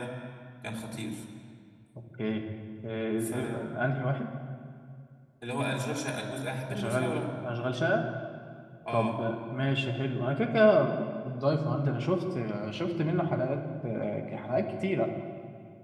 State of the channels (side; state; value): both; identical; correlation 1.00